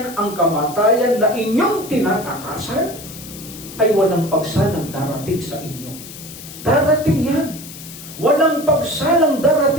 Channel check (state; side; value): noise; left; hiss, 14 dB below the sound